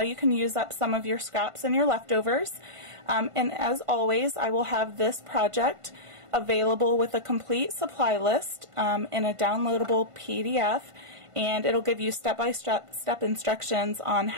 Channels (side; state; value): left; late; 1.5 ms